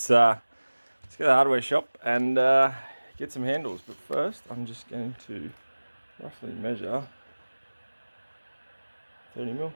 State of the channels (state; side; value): inverted; both; correlation -1.00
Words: go to the hardware shop and get some handles. But first, I'm just going to roughly measure 30mm.